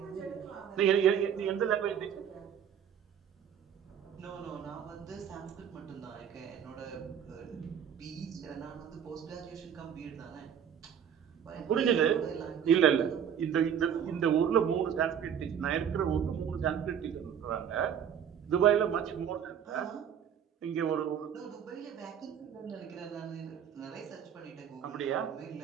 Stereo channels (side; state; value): left; quieter; 8.5 dB